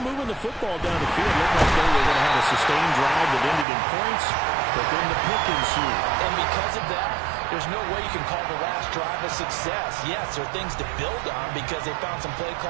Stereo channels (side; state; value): left; drops out; at 3.7 s